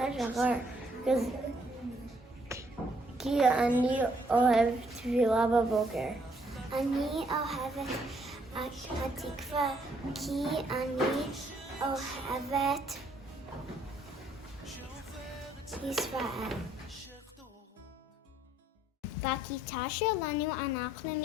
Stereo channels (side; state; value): both; normal; correlation 0.68